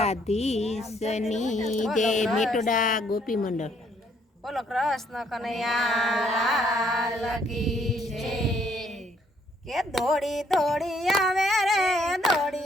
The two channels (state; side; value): normal; both; correlation 0.67